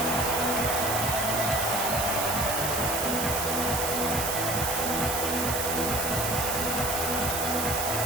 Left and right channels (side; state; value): right; noise; hiss, 1 dB below the sound